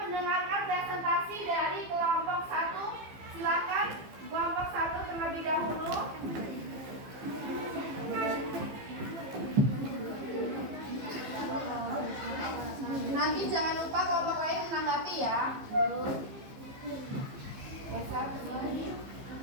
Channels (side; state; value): left; late; 15 ms